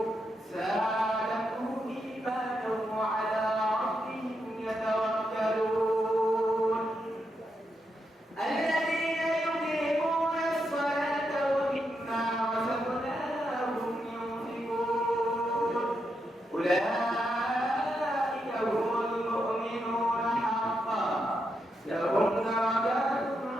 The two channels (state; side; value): normal; both; correlation 0.83